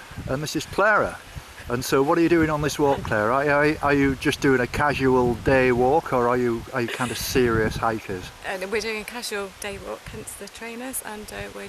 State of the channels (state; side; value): identical; both; correlation 1.00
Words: and this is Clara. And so, what are you doing on this walk, Claire? Are you just doing a casual day walk, or are you kind of serious hikers? We're doing a casual day walk, hence the trainers, and we're